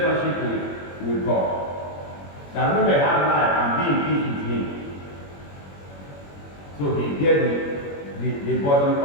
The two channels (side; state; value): right; late; 21 ms